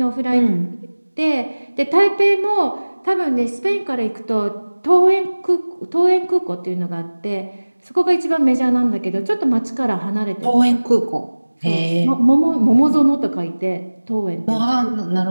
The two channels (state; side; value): inverted; both; correlation -1.00